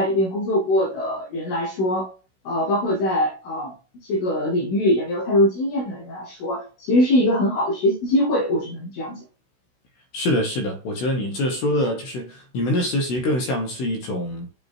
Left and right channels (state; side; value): late; right; 16 ms